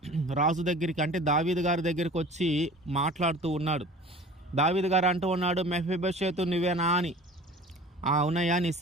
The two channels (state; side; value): normal; both; correlation 0.43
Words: రాజు దగ్గరికి, అంటే దావీదు గారి దగ్గరికి వచ్చి మాట్లాడుతూ ఉన్నాడు. దావీదు గారు అంటూ ఉన్నాడు, మెఫీబోషెతు నువ్వేనా అని. అవునయ్యా, నీ